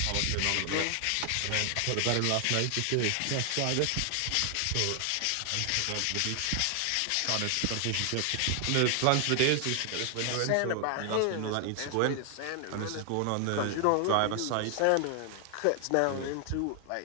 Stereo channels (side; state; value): both; different; correlation 0.00